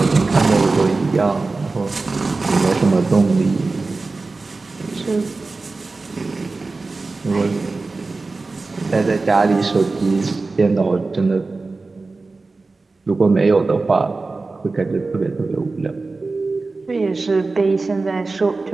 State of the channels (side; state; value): left; quieter; 3.7 dB